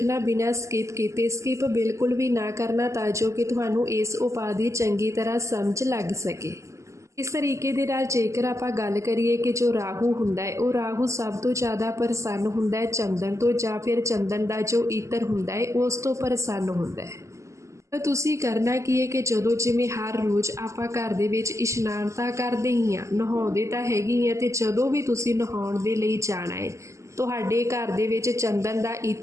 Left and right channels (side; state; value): left; late; 0.14 ms